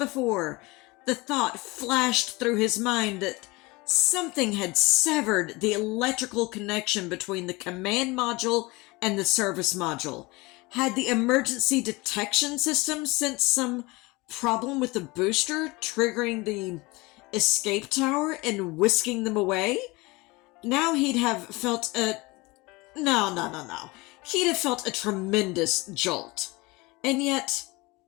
The thought flashed through his mind that something had severed the electrical connection between the command module and the service module. Had the emergency detection system sensed some problem with the booster, triggering the escape tower and whisking them away? Now he'd have felt a... No. He'd have felt a tremendous jolt. And yet,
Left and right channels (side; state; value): right; quieter; 23.5 dB